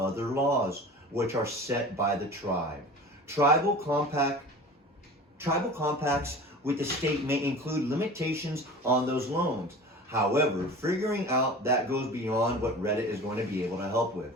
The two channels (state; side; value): normal; both; correlation 0.37